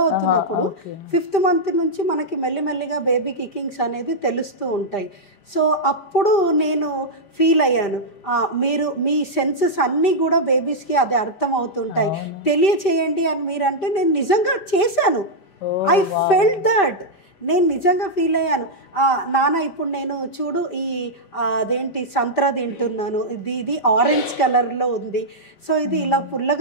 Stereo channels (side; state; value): right; late; 5.1 ms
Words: అవుతున్నప్పుడు 5th మంత్ నుంచి మనకి మెల్లిమెల్లిగా బేబీ కికింగ్స్ అనేది తెలుస్తూ ఉంటాయి. సో అప్పుడు నేను ఫీల్ అయ్యాను, మీరు మీ సెన్సెస్ అన్నీ కూడా బేబీస్కి అది అర్థం అవుతుంటాయి, తెలియచేయండి అని మీరంటే నేను నిజంగా చేశాను. I felt that. నేను నిజంగా ఫీల్ అయ్యాను, నాన్న ఇప్పుడు నేను చూడు ఈ అదేంటి సంత్రా తింటున్నాను, ఇది ఆరెంజ్ కలర్లో ఉంది, సో ఇది ఇలా